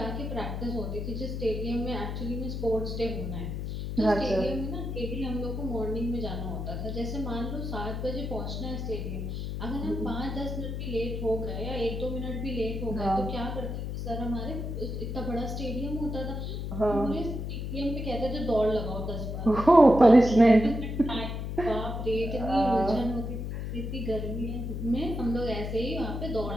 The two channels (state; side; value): noise; left; hum, 4 dB below the sound